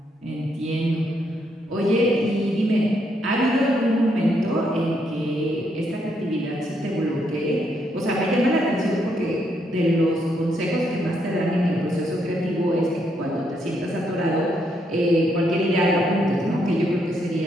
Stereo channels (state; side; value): normal; both; correlation 0.76